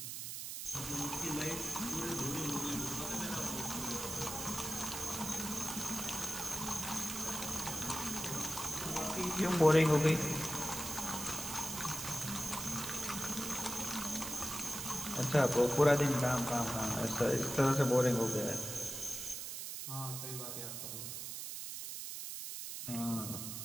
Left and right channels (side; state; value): right; noise; hiss, 6 dB below the sound